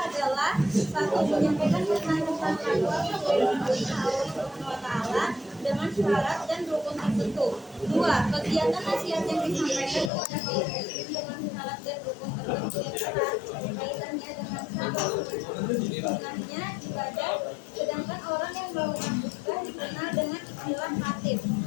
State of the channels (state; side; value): drops out; right; at 10.1 s